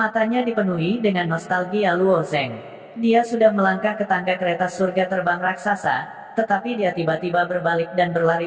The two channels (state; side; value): identical; both; correlation 1.00